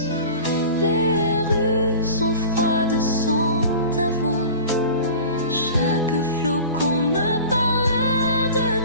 Les rues sont froides sans ta voix. Chaque flocon me parlait de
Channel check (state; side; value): inverted; both; correlation -0.38